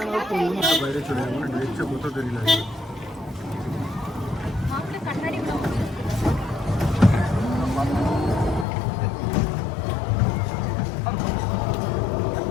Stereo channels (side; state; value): right; drops out; at 8.7 s